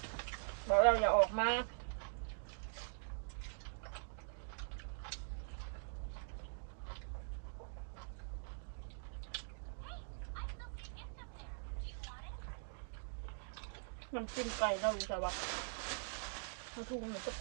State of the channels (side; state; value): left; silent; digital silence